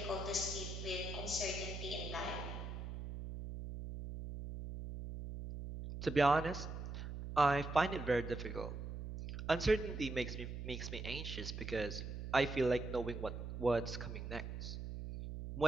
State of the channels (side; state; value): right; noise; hum, 6 dB below the sound